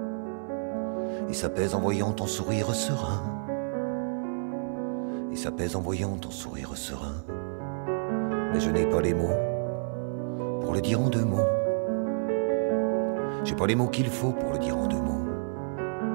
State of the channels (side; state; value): left; silent; digital silence